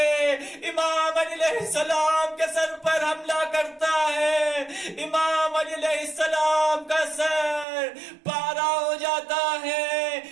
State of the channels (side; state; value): left; drops out; at 7.7 s